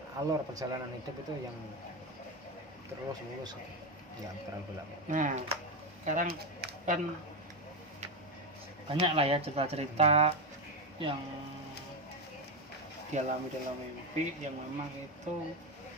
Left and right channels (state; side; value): normal; both; correlation 0.12